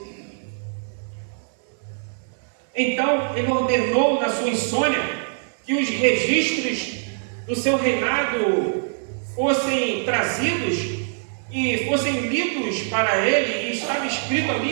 Então, ele ordenou na sua insônia que os registros do seu reinado fossem trazidos e fossem lidos para ele, e estava escrito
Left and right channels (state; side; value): silent; left; 63 dB below the other